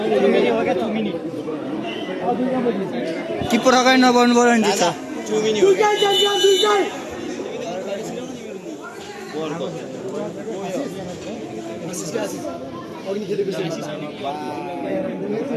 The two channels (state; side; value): identical; both; correlation 1.00